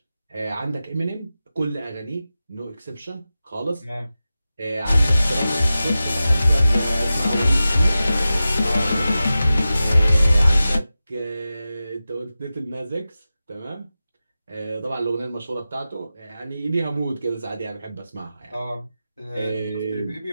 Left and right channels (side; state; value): both; inverted; correlation -0.94